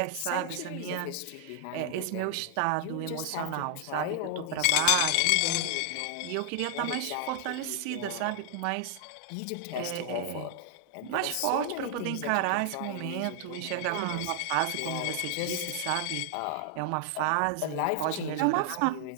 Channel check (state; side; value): different; both; correlation 0.00